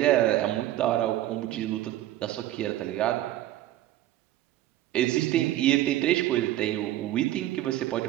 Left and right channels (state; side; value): quieter; left; 14.2 dB